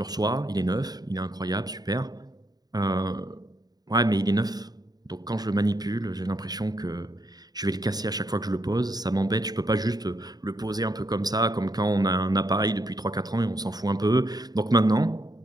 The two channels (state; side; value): late; left; 0.19 ms